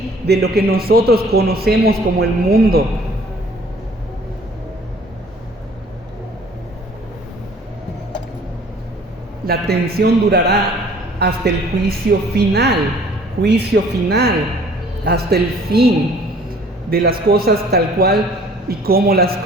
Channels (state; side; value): normal; both; correlation 0.54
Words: de lo que nosotros conocemos como el mundo. La tensión durará hasta el juicio final, hasta el fin de las cosas tal cual y como las